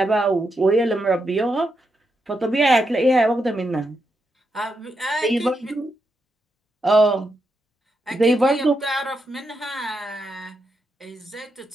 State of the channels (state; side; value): normal; both; correlation 0.83